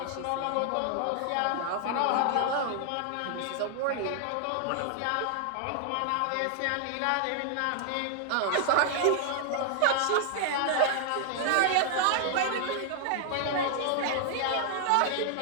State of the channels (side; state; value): both; different; correlation 0.00